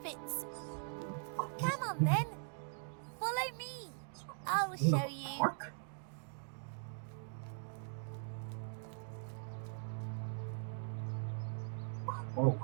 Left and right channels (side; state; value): left; silent; digital silence